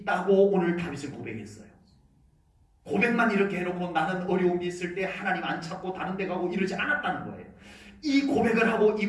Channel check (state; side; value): identical; both; correlation 1.00